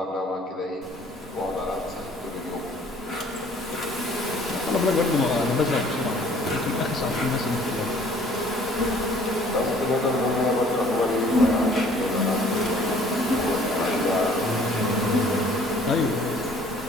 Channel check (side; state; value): both; normal; correlation 0.55